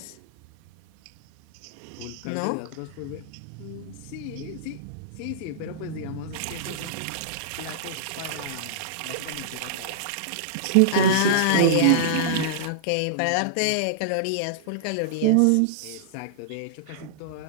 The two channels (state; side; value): different; both; correlation -0.02